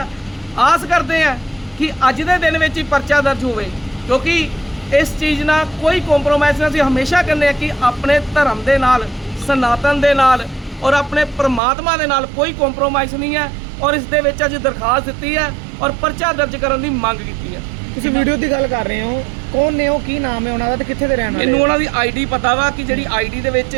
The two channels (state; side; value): drops out; left; at 11.6 s